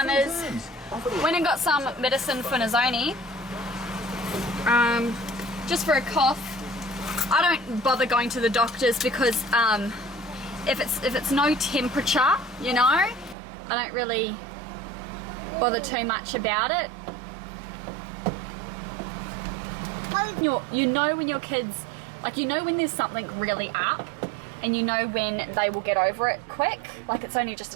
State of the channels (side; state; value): left; drops out; at 13.4 s